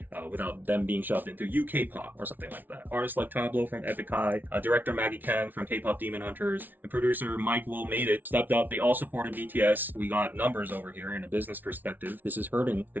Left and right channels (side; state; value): left; late; 0.086 ms